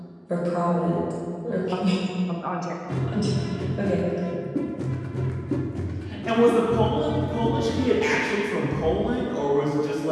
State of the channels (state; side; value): identical; both; correlation 1.00